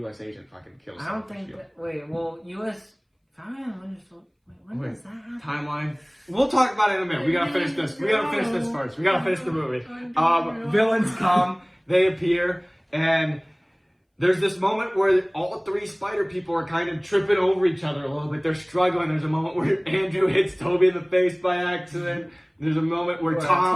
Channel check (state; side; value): identical; both; correlation 1.00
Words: agent fucking kills. I don't think that. Wait, well, U.S. When does that happen? Timeline. We'll talk about it in a minute. We gotta finish this. We gotta finish this first. We gotta finish the movie. Villains come, they appear, and there's this moment where all three spider people are kind of tripping over each other a little bit. They're struggling. There's a moment where Andrew hits Toby in the face by accident. There's a moment where